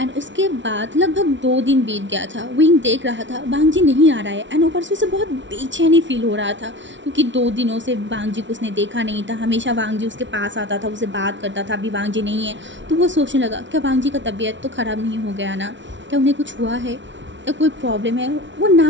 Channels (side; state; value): left; late; 0.55 ms